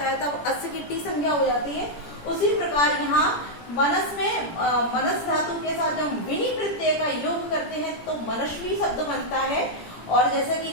है तब अस की टी संज्ञा हो जाती है। उसी प्रकार यहाँ मनस में मनस धातु के साथ जब हम विनी प्रत्यय का योग करते हैं तो मनस्वी शब्द बनता है। और जैसे कि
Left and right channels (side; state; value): right; late; 17 ms